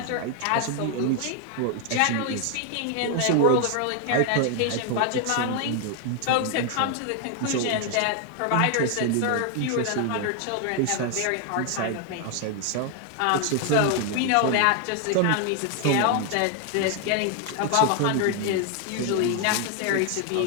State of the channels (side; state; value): both; different; correlation 0.01